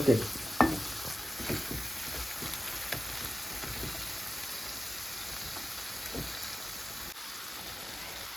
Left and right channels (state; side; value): normal; both; correlation 0.93